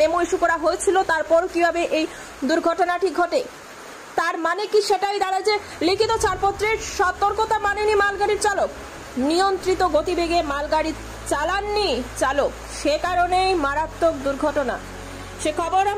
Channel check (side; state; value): both; identical; correlation 1.00